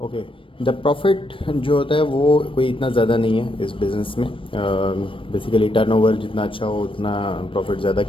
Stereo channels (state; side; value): late; right; 0.25 ms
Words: ओके, द प्रॉफिट जो होता है वो कोई इतना ज़्यादा नहीं है इस बिज़नेस में। बेसिकली टर्नओवर जितना अच्छा हो उतना प्रॉफिट ज़्यादा